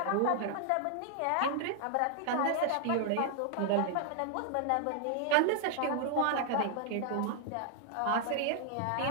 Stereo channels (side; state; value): both; different; correlation 0.00